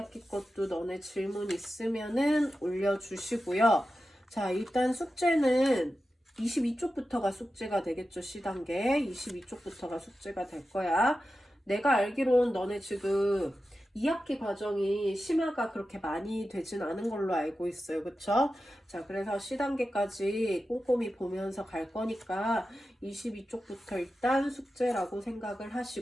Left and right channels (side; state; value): both; normal; correlation 0.92